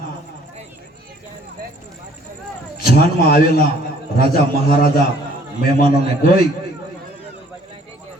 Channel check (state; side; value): normal; both; correlation 0.58